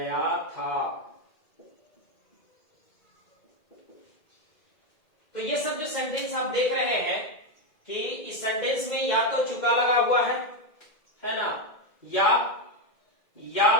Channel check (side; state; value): right; late; 2.0 ms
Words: था। तो ये सब जो सेंटेंस आप देख रहे हैं कि इस सेंटेंस में या तो चुका लगा हुआ है ना, या